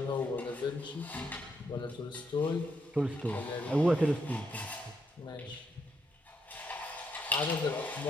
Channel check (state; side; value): normal; both; correlation 0.78